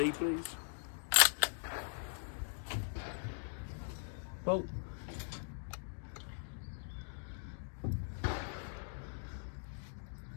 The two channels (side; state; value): right; silent; digital silence